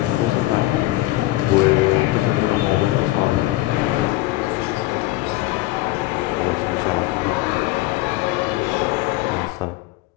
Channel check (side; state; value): right; quieter; 17.9 dB